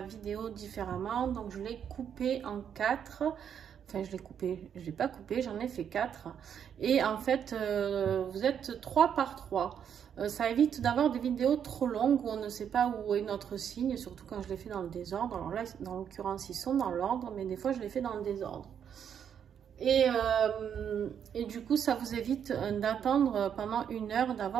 vidéo différemment, donc je l'ai coupée en 4. Enfin, je l'ai coupée, je ne l'ai pas coupée, j'en ai fait 4. Et en fait, vous êtes 3 par 3. Ça évite d'avoir des vidéos trop longues où on ne sait pas où est notre signe, surtout quand je les fais dans le désordre. Alors là, dans l'occurrence, ils sont dans l'ordre, mais des fois, je les fais dans le désordre. Et du coup, ça vous évite d'attendre pendant 1 heure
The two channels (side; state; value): left; quieter; 8.3 dB